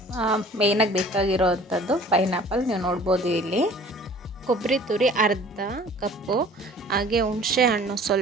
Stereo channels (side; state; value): both; normal; correlation 0.49